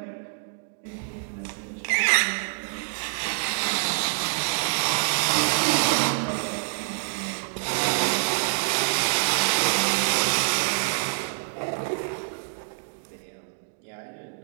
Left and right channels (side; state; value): left; silent; digital silence